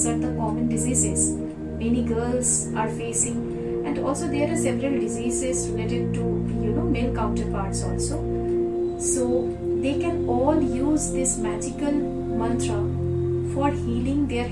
are the common diseases many girls are facing, and also there are several diseases related to male counterparts also. So they can all use this magical mantra for healing their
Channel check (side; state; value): both; identical; correlation 1.00